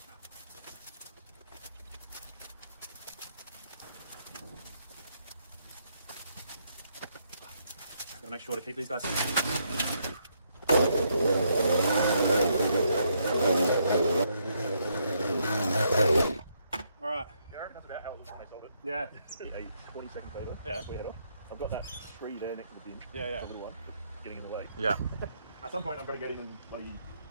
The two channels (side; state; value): both; inverted; correlation -0.75